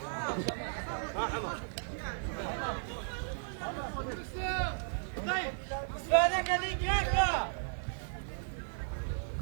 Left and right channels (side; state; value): left; silent; 54 dB below the other